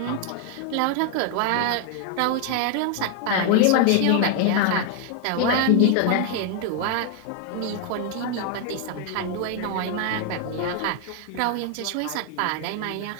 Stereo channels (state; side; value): different; both; correlation 0.00